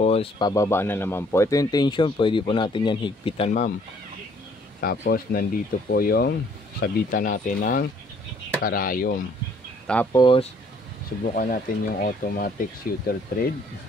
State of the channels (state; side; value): normal; both; correlation 0.61